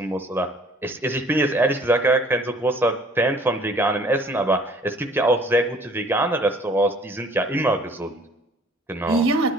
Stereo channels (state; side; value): normal; both; correlation 0.55